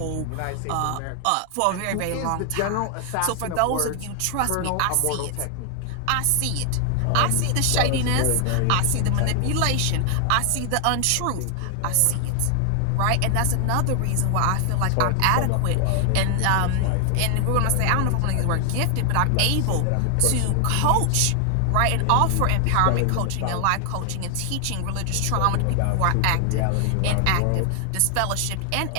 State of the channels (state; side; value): different; both; correlation 0.00